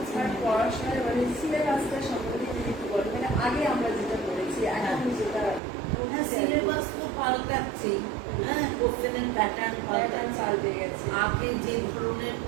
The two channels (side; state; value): left; drops out; at 5.6 s